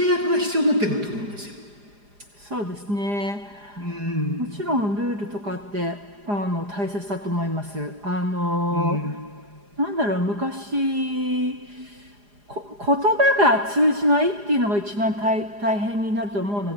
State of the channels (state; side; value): late; left; 4.9 ms